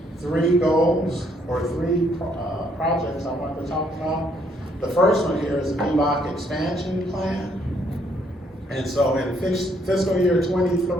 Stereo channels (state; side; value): normal; both; correlation 0.69